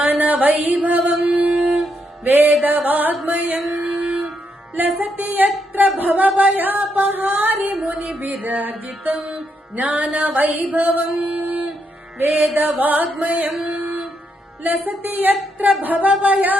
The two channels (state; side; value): normal; both; correlation 0.79